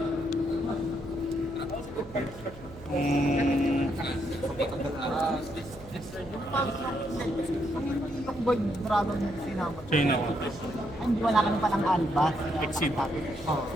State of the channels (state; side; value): noise; right; hum, 17 dB below the sound